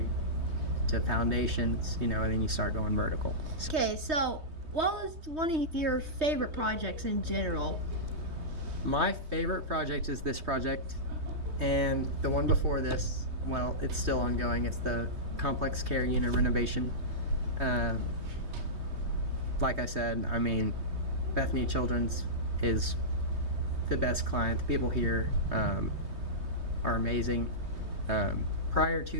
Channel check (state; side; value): late; left; 3.2 ms